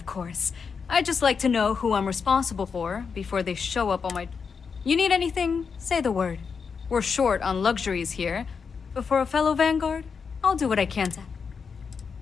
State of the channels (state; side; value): quieter; right; 5.8 dB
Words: course. I'd just like to know who I'm responsible for before they show up on my... You need anything? Say the word. We're short on luxuries here, but for a fellow Vanguard, I'll do what I can to...